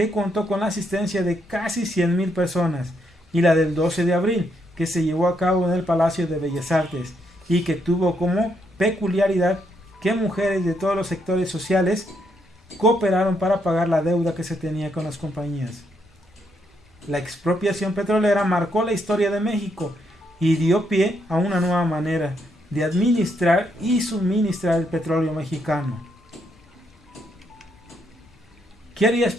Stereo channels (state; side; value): normal; both; correlation 0.76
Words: contó con la asistencia de casi 100,000 personas, y la del 12 de abril, que se llevó a cabo en el Palacio de Bellas Artes, y que tuvo como peculiaridad que mujeres de todos los sectores sociales cooperaron para pagar la deuda que se tenía con las compañías. La expropiación petrolera marcó la historia de México y dio pie a una nueva manera de administrar y suministrar el petróleo mexicano. ¿Qué harías